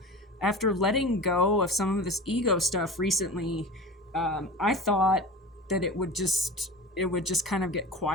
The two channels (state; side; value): normal; both; correlation 0.32